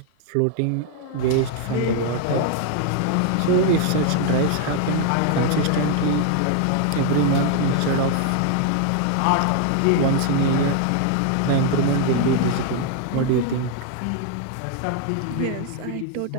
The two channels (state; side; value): different; both; correlation 0.00